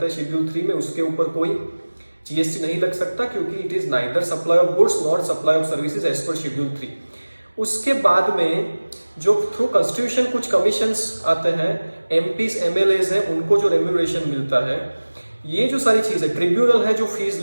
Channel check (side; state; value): both; inverted; correlation -1.00